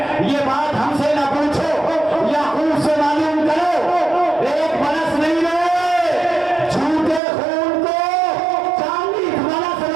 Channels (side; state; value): left; drops out; at 7.2 s